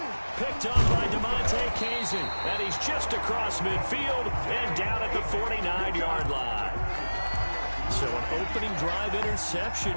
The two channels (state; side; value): inverted; both; correlation -1.00